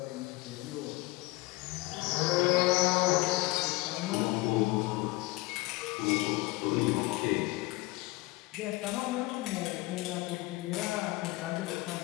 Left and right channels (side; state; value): right; quieter; 21.3 dB